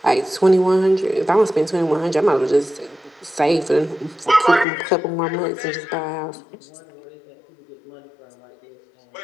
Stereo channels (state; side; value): drops out; right; at 4.7 s